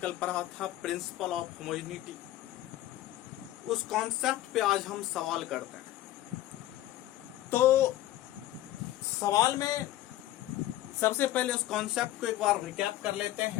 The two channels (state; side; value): quieter; right; 14.6 dB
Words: पढ़ा था, प्रिंसिपल ऑफ होमोजेनिटी। उस कॉन्सेप्ट पे आज हम सवाल करते हैं। तो सवाल में सबसे पहले उस कॉन्सेप्ट को एक बार रिकैप कर लेते